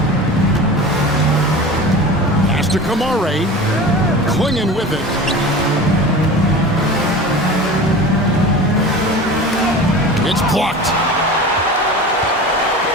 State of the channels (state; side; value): normal; both; correlation 0.34